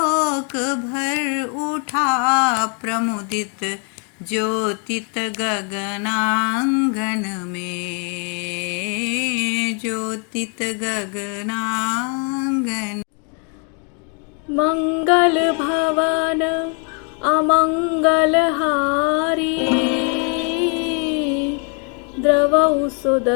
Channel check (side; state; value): right; quieter; 39.0 dB